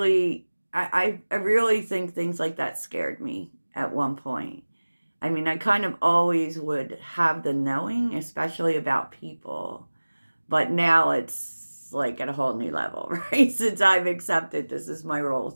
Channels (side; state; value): both; inverted; correlation -1.00